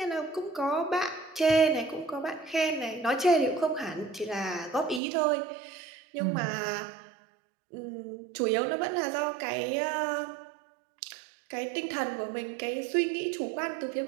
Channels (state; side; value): drops out; left; at 5.0 s